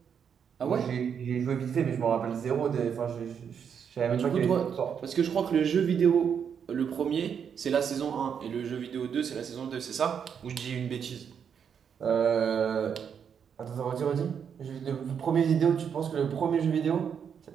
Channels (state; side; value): quieter; left; 7.5 dB